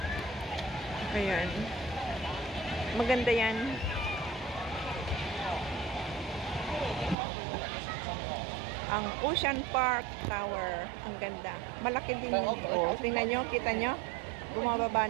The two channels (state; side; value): drops out; left; at 7.2 s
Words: Ayan. Maganda yan. Ang Ocean Park Tower. Ang ganda. Malaki din. Oh, tingnan nyo, kita nyo. Bumababa